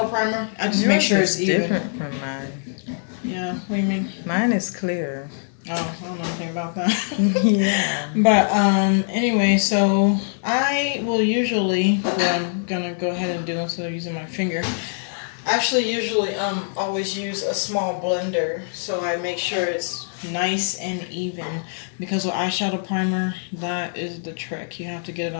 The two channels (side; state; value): right; silent; digital silence